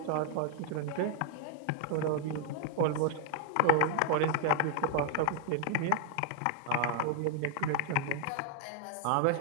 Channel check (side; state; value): both; different; correlation 0.00